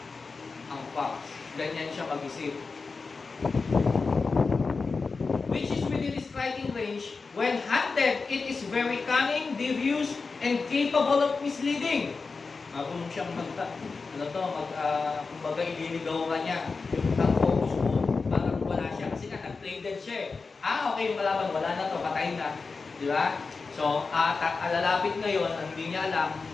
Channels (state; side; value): quieter; right; 4.4 dB